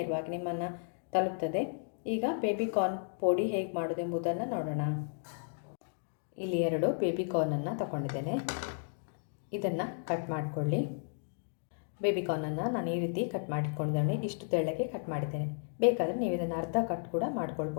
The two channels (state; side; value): silent; right; digital silence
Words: ನಿಮ್ಮನ್ನು ತಲುಪ್ತದೆ. ಈಗ ಬೇಬಿಕಾರ್ನ್ ಪೋಡಿ ಹೇಗೆ ಮಾಡೋದು ಎಂಬುದನ್ನು ನೋಡೋಣ. ಇಲ್ಲಿ 2 ಬೇಬಿಕಾರ್ನನ್ನು ತಗೊಂಡಿದ್ದೇನೆ. ಇದನ್ನು ಕಟ್ ಮಾಡಿಕೊಳ್ಳಿ. ಬೇಬಿಕಾರ್ನನ್ನು ನಾನು ಈ ರೀತಿ ಕಟ್ ಮಾಡಿಟ್ಕೊಂಡಿದ್ದೇನೆ. ಇಷ್ಟು ತೆಳ್ಳಗೆ ಕಟ್ ಮಾಡಿದ್ದೇನೆ. ಬೇಕಾದರೆ ನೀವು ಇದನ್ನು ಅರ್ಧ ಕಟ್ ಕೂಡ